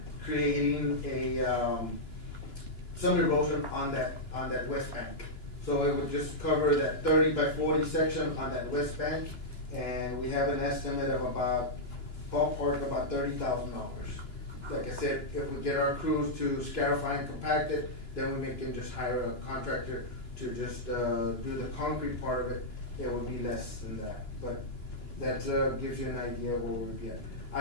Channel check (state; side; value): late; right; 2.9 ms